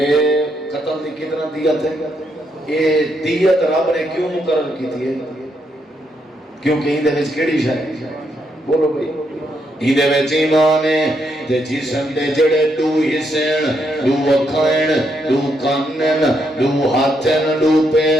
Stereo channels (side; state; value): both; normal; correlation 0.78